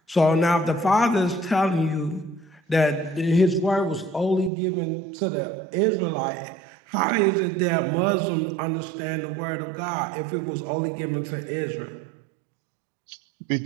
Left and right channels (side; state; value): left; drops out; at 4.5 s